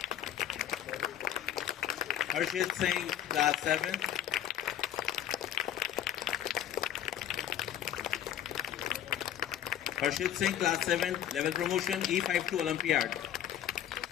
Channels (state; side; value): quieter; right; 10.7 dB